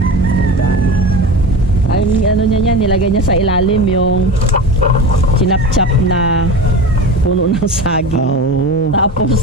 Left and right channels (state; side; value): normal; both; correlation 0.30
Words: Ay, ano niya yan, nilagay niya sa ilalim yung sinapchap na puno ng saging. Oo.